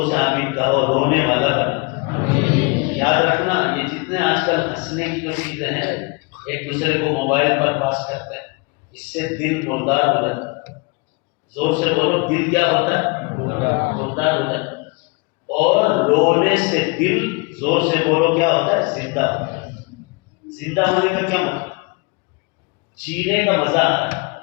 سے آمین کہو، رونے والا بنا۔ یاد رکھنا، یہ جتنے آج کل ہنسنے کی جو چیزیں ہیں، ایک دوسرے کو موبائل پر پاس کرتے ہیں، اس سے دل مردار ہو جاتا ہے۔ زور سے بولو، دل کیا ہوتا ہے؟ مردار ہو جاتا ہے۔ اور رونے سے دل، زور سے بولو، کیا ہوتا ہے؟ زندہ ہوتا ہے۔ زندہ ہونے کا کیا مطلب؟ جینے کا مزہ آتا ہے۔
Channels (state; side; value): quieter; right; 29.2 dB